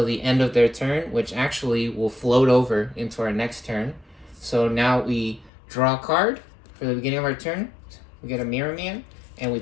the end of their turn, which actually will float over into our next turn. So now we draw a card for the beginning of our turn. We get a Mirror Man, and we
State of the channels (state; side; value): drops out; right; at 5.5 s